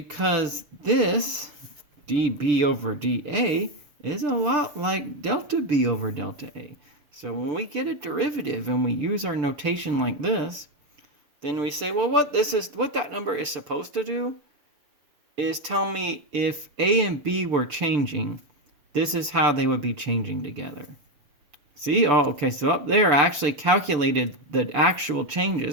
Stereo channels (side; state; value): left; late; 6.9 ms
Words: this dB over dA is a lot like delta B over delta A. So when we get a derivative and we use our notation like this, then we say, well, what that number is supposed to do is tell me if A and B were changing, this is how they would be changing together. See? Oh, okay, so up there I actually calculated the actual